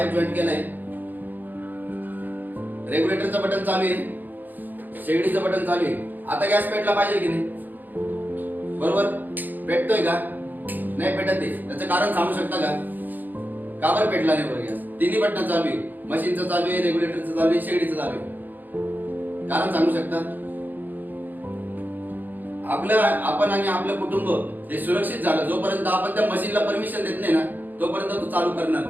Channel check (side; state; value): left; late; 0.086 ms